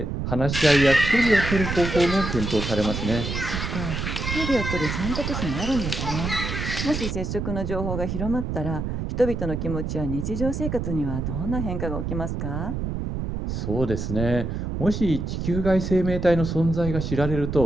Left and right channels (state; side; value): noise; right; rumble, 3 dB below the sound